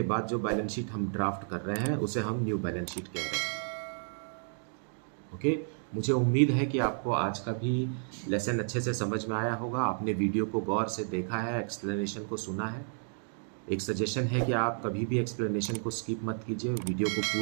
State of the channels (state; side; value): silent; left; digital silence